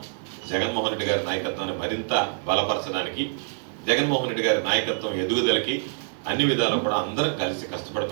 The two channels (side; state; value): left; silent; digital silence